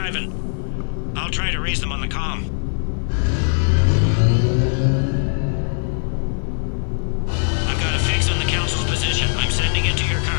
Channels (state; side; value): silent; right; 56 dB below the other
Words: I'll try to raise them on the comm. I've got a fix on the council's position. I'm sending it to your